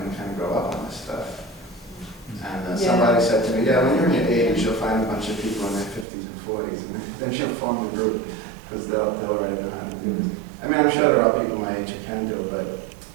to kind of grow up on this stuff. And somebody said to me, yeah, when you're in your 80s, you'll find a bunch of people in their 50s and 40s, and then you'll form the group, because they'll already know how to do this. I mean, I'm sure there are people my age who can do it, but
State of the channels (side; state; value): left; drops out; at 6.1 s